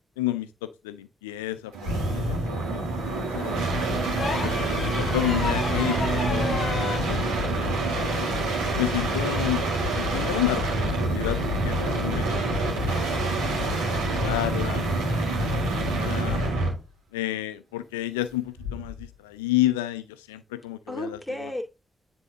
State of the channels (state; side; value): normal; both; correlation 0.45